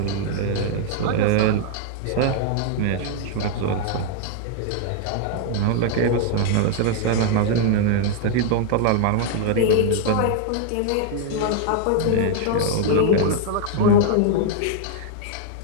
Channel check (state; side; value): different; both; correlation 0.00